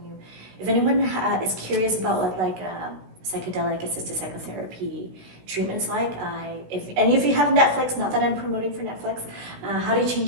you, if anyone is curious about what like psychedelic-assisted psychotherapy treatments like, if any of you have Netflix, not that I'm promoting for Netflix, How to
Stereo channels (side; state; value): left; late; 16 ms